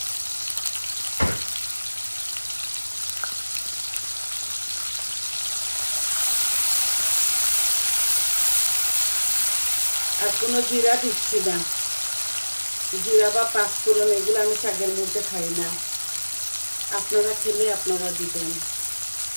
আর কোনো জিরা দিচ্ছি না, জিরা বা পাঁচফোড়ন এগুলো আমি শাকের মধ্যে খাই না। আপনারা খেলে আপনারা দিবেন।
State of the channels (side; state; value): both; inverted; correlation -1.00